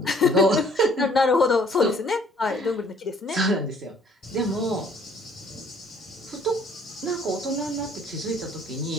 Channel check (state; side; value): normal; both; correlation 0.59